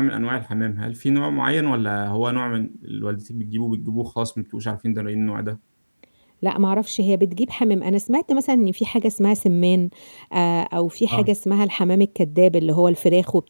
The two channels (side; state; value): both; inverted; correlation -1.00